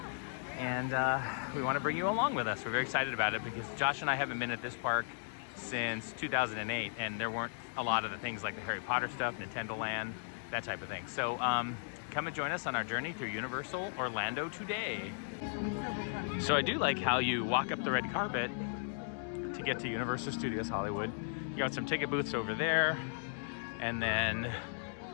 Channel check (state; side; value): silent; right; digital silence